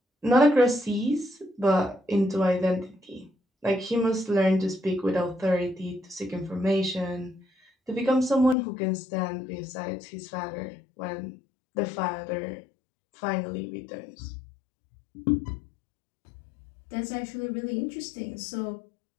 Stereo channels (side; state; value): right; drops out; at 8.6 s